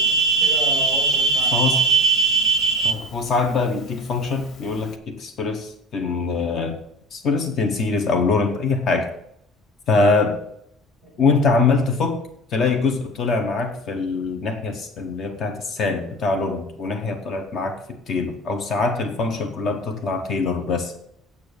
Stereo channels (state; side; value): normal; both; correlation 0.37